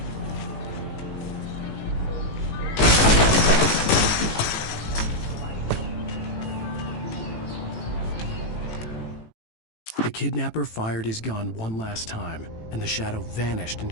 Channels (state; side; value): late; right; 18 ms